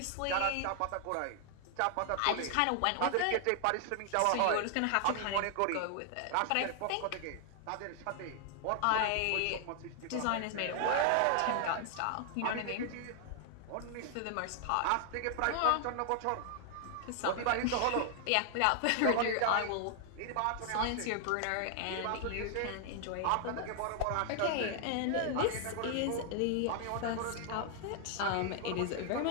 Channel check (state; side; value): different; both; correlation 0.00